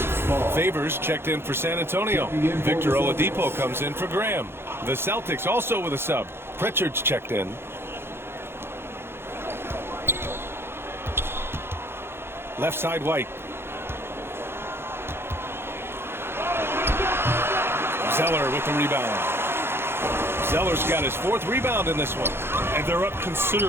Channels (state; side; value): late; left; 0.11 ms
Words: Favors checked in for San Antonio. Victor Oladipo comes in for Graham. The Celtics also with a sub. Pritchard's checked in. Left side White. Zeller with the rebound. Zeller's got his 4th rebound in this one. And they're up